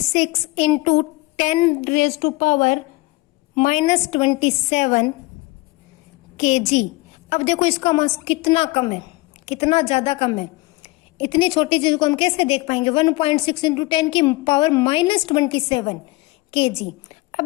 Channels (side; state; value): right; quieter; 22.6 dB